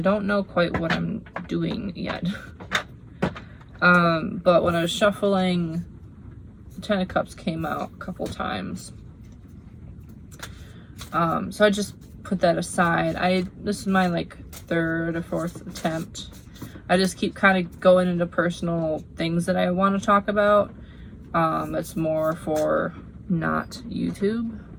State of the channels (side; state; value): both; identical; correlation 1.00